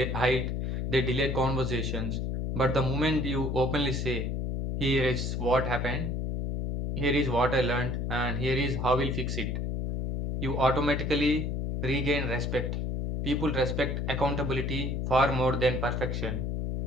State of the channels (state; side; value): noise; left; hum, 1 dB below the sound